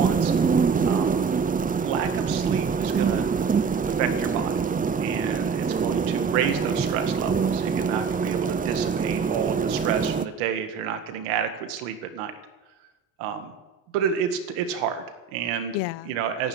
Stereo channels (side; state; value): left; quieter; 6.0 dB